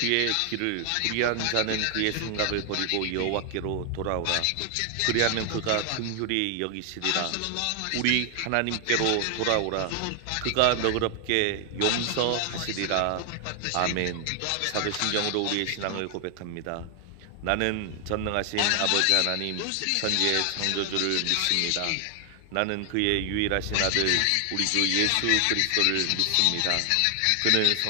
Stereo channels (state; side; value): different; both; correlation 0.00